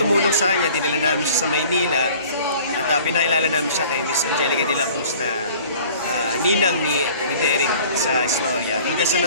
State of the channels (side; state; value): both; inverted; correlation -0.48